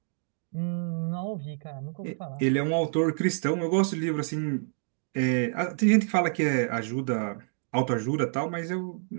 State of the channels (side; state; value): left; silent; digital silence